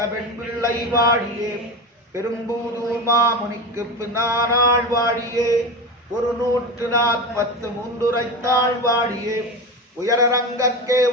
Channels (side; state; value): both; normal; correlation 0.24